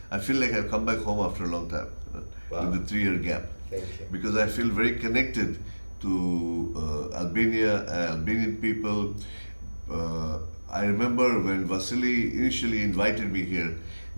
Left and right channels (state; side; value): inverted; both; correlation -1.00